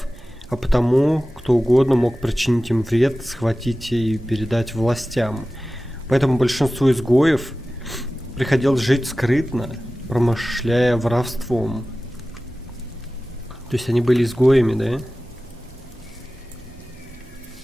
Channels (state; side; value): normal; both; correlation 0.96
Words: а потому кто угодно мог причинить им вред, схватить и передать властям. Поэтому большинству изгоев приходилось жить скрытно, промышляя воровством. То есть они были изгоями, да?